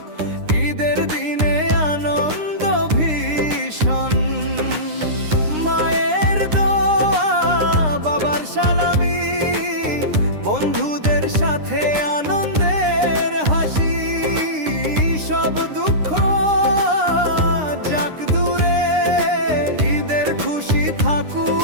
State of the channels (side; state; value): left; late; 9.8 ms